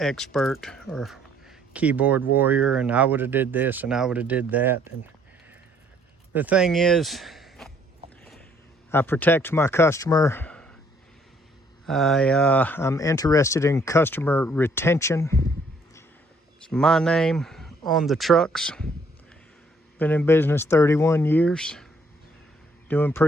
or keyboard warrior, and I would have did this and I would have did that. And the thing is, I protect my customer. I'm interested in customer retention. It's my name on the trucks. Been in business 31 years, doing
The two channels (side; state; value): both; normal; correlation 0.64